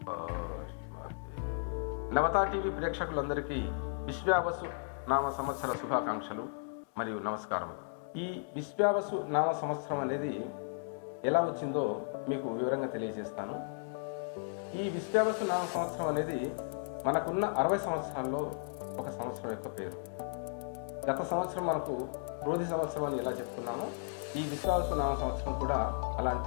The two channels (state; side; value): silent; right; digital silence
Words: నవతా టీవీ ప్రేక్షకులందరికీ విశ్వావసు నామ సంవత్సర శుభాకాంక్షలు మరియు నమస్కారములు. ఈ విశ్వావసు నామ సంవత్సరం అనేది ఎలా వచ్చిందో మీకు వివరంగా తెలియజేస్తాను. ఈ విశ్వావసు నామ సంవత్సరం అనేది మనకున్న 60 సంవత్సరాల్లో ఒక సంవత్సరం యొక్క పేరు. గత సంవత్సరం మనకు క్రోధి సంవత్సరం అని ఎలా చెప్పుకున్నామో, ఈ విశ్వావసు నామ సంవత్సరం కూడా